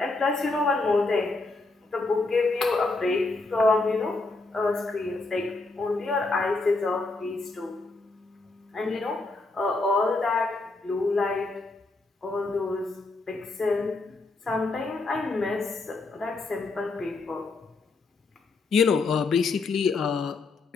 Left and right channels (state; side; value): quieter; right; 3.5 dB